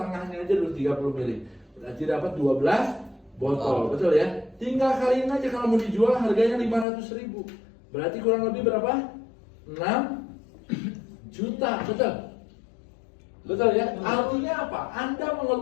aja dulu 30 mili. Berarti dapat 12 botol, betul ya? Tinggal kaliin aja kalau mau dijual harganya 500.000. Berarti kurang lebih berapa? 6 juta, betul? Betul ya? Artinya apa? Anda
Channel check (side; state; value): right; drops out; at 6.9 s